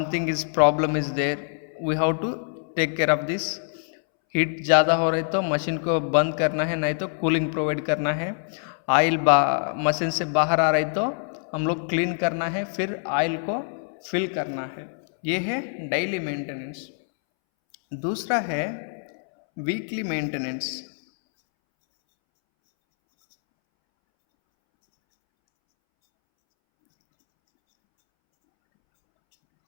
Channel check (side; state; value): right; silent; 62 dB below the other